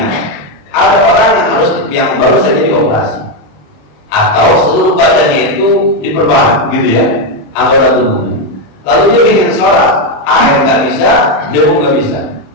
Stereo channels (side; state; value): right; late; 27 ms